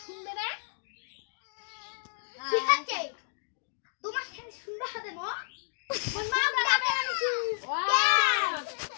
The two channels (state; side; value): silent; right; digital silence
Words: শুনবে না ঠিক আছে তোমার সাথে সুন্দর হবে মা মা যাবে